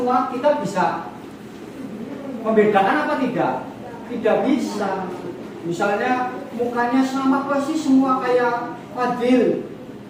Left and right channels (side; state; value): both; identical; correlation 1.00